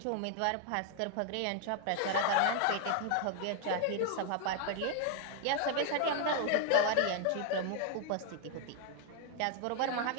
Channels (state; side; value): different; both; correlation 0.00